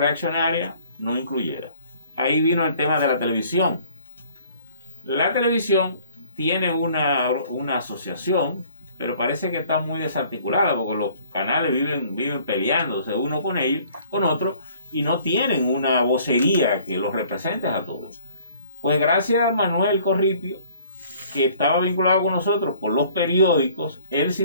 no incluyera. Ahí vino el tema de la televisión. La televisión tiene una asociación, pero parece que está muy desarticulada porque los canales viven peleándose uno con ellos, con otro, y no tienen una vocería que los represente a todos. Pues gracias a Manuel Corripio, que estaba vinculado con nosotros por los periódicos, él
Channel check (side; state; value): both; inverted; correlation -0.56